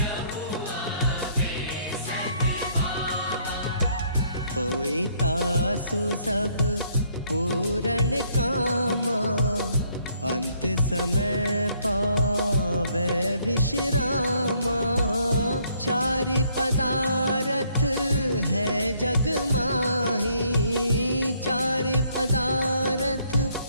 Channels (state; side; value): inverted; both; correlation -0.67